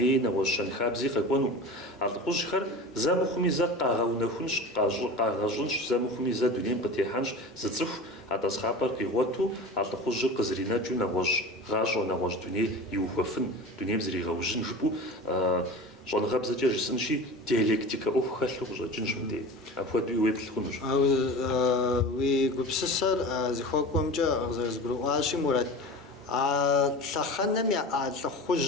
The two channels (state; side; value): normal; both; correlation 0.33